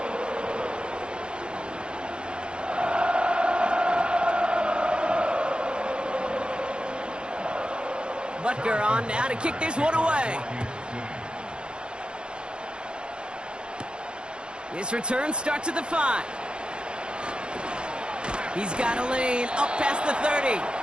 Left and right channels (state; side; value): late; left; 0.052 ms